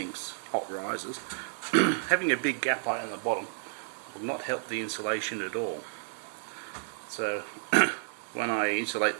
hot rises. Having a big gap right on the bottom will not help the insulation at all. So when I insulate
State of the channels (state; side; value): silent; left; digital silence